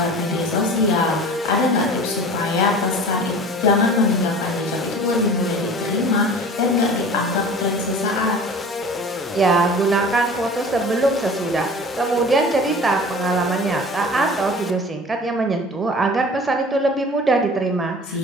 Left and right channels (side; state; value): both; normal; correlation 0.41